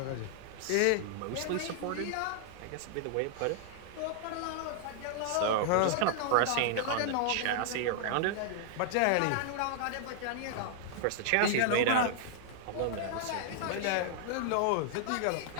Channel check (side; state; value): both; different; correlation -0.01